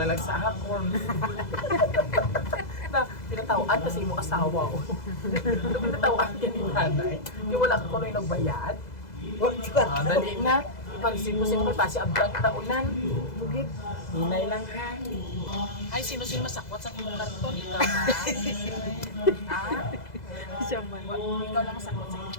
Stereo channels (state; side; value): late; right; 2.0 ms